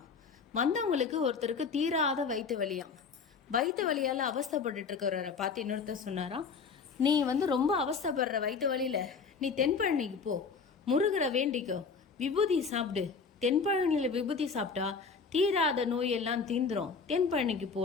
வந்தவங்களுக்கு ஒருத்தருக்கு தீராத வயிற்று வலியாம். வயிற்று வலியால அவஸ்தப்பட்டு இருக்கிறவரை பார்த்து இன்னொருத்தர் சொன்னாராம், நீ ரொம்ப அவஸ்தப்படுற வயிற்று வலியில நீ தென்பழனிக்கு போ, முருகரை வேண்டிக்கோ, விபூதி சாப்பிடு. தென்பழனியில விபூதி சாப்பிட்டா தீராத நோயெல்லாம் தீந்துரும், தென்பழனிக்கு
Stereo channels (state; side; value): quieter; right; 5.3 dB